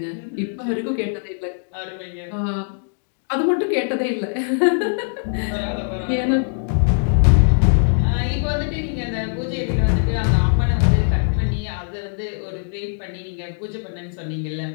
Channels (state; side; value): silent; right; digital silence